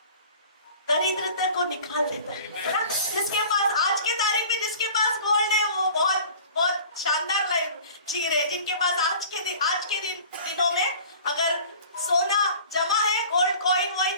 दरिद्रता को निकाल देता है। जिसके पास आज के तारीख में जिसके पास गोल्ड है, वो बहुत बहुत शानदार लाइफ जी रहे। जिनके पास आज के दिनों में अगर सोना जमा है, गोल्ड कॉइन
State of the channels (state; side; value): inverted; both; correlation -0.45